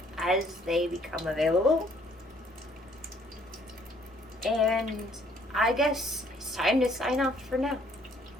as they become available. And I guess it's time to sign off for now.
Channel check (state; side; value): normal; both; correlation 0.63